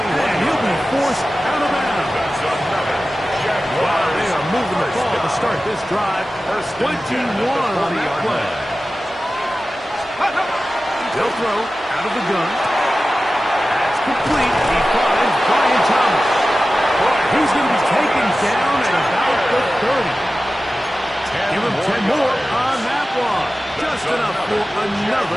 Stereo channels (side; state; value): both; normal; correlation 0.95